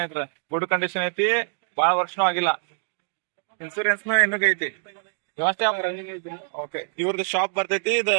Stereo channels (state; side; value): silent; left; digital silence